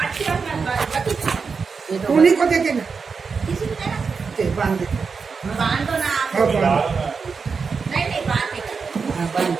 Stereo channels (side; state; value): left; quieter; 5.2 dB